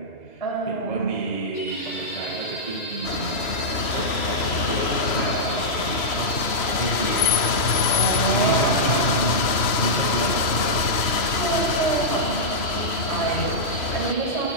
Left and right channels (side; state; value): right; late; 3.0 ms